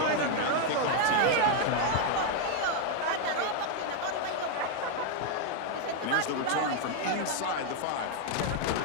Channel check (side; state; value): both; different; correlation 0.00